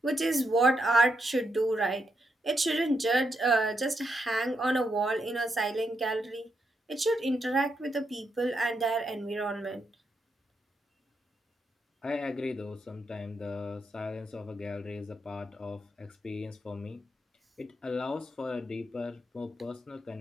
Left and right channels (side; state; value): both; normal; correlation 0.81